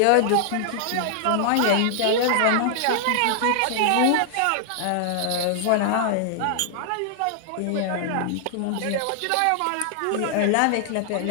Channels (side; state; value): both; different; correlation 0.00